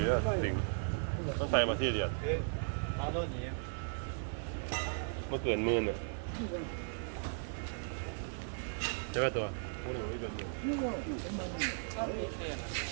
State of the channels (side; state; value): left; silent; digital silence